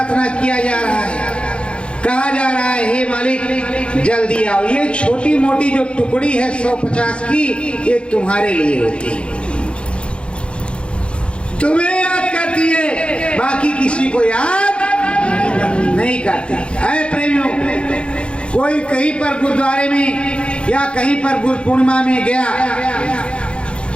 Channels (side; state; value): right; late; 0.057 ms